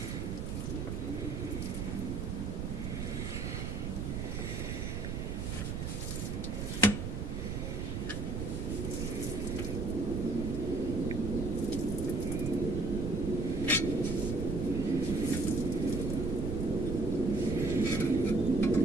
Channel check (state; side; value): noise; right; rumble, 3 dB below the sound